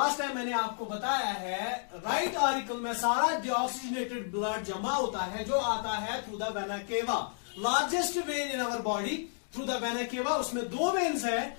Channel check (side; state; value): right; silent; digital silence